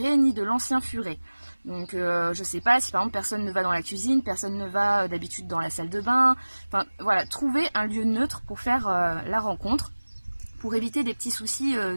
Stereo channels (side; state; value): both; inverted; correlation -1.00